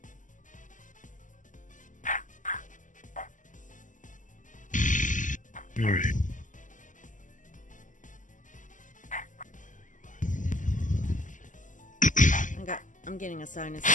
All right. I'm getting a sinus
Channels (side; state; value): right; late; 0.37 ms